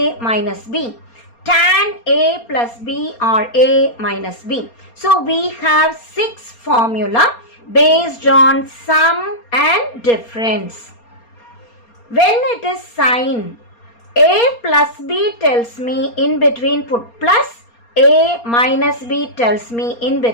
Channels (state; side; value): late; right; 4.3 ms